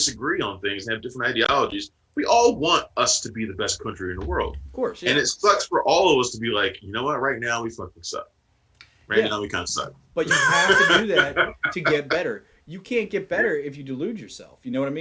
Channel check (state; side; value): identical; both; correlation 1.00